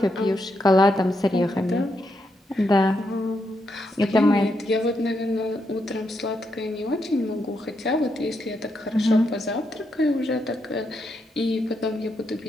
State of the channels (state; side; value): normal; both; correlation 0.81